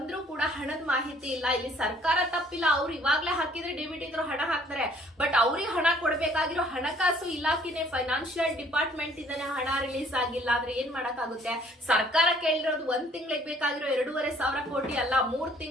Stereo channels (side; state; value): both; normal; correlation 0.59